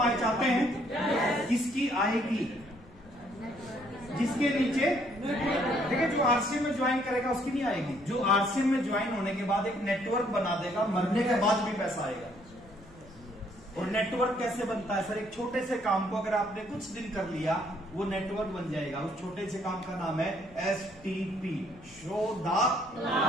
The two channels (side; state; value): left; noise; rumble, 24 dB below the sound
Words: आए चाहते हैं? किसकी आएगी? जिसके नीचे देखिए, जो आरसीएम में ज्वाइन करेगा उसकी नहीं आएगी। जो आरसीएम में ज्वाइन होने के बाद एक नेटवर्क बना देगा, मरने के बाद भी पैसा आएगा। और नेटवर्क कैसे बनता है सर? एक छोटे से काम को अगर आपने कुछ दिन कर लिया, वो नेटवर्क बन जाएगा। उस छोटे से काम का नाम है STP, शो द